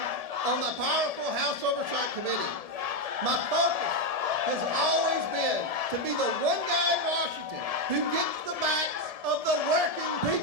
on the powerful House Oversight Committee. My focus has always been to be the one guy in Washington who gets the backs of the working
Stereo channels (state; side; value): late; left; 1.7 ms